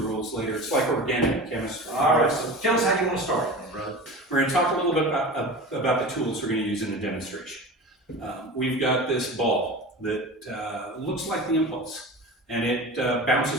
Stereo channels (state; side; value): normal; both; correlation 0.33